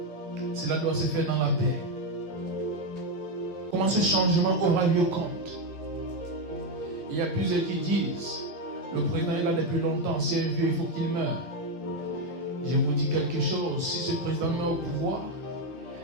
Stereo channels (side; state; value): both; normal; correlation 0.07